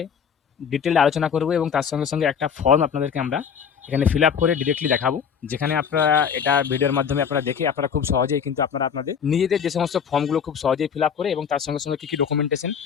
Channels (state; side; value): quieter; right; 7.2 dB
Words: ডিটেইলড আলোচনা করব এবং তার সঙ্গে সঙ্গে একটা ফর্ম আপনাদেরকে আমরা এখানে ফিল আপ করে ডিরেক্টলি দেখাবো, যেখানে আপনারা এটা ভিডিওর মাধ্যমে আপনারা দেখে আপনারা খুব সহজেই কিন্তু আপনারা আপনাদের নিজেদের যে সমস্ত ফর্মগুলো খুব সহজেই ফিল আপ করে এবং তার সঙ্গে সঙ্গে কী কী ডকুমেন্টেশন